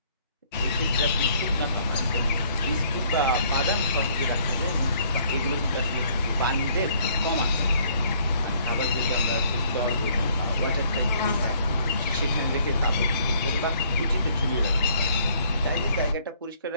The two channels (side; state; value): both; inverted; correlation -0.62